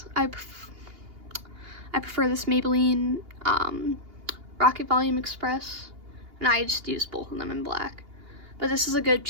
prefer this Maybelline Rocket Volume Express, and I just use both of them in black. But this is a good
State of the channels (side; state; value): left; late; 2.8 ms